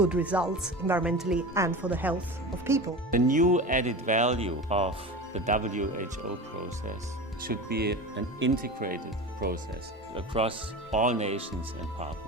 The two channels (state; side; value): normal; both; correlation 0.30